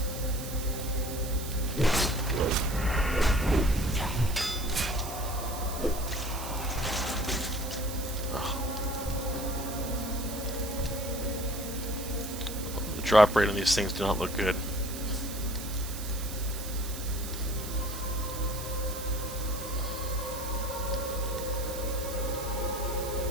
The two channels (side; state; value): right; noise; hiss, 9 dB below the sound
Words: The drop rate on these things do not look good.